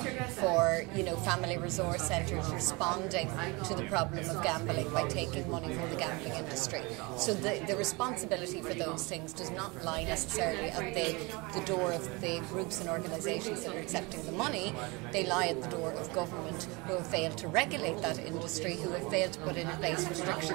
for, family resource centres responding to the problem of gambling by taking money from the gambling industry. So the responsibility for those things does not lie necessarily at the door of the groups and organisations that are accepting the money. They lie at the door of government, who have failed to regulate that industry, who have failed to put in place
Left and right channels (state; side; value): quieter; left; 26.5 dB